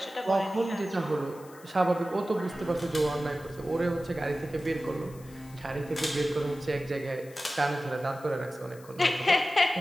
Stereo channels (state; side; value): noise; left; hiss, 23 dB below the sound